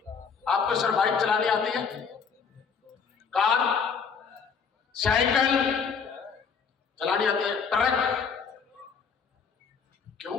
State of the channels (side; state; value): right; quieter; 6.1 dB